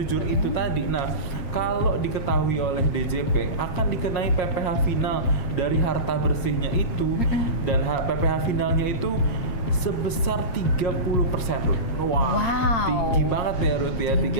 itu tadi, kalau diketahui oleh DJP akan dikenai PPh final dari harta bersihnya itu, dan PPh finalnya itu sebesar 30%, Ruth. Wow. Tinggi banget ya Ruth ya,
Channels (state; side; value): late; right; 7.4 ms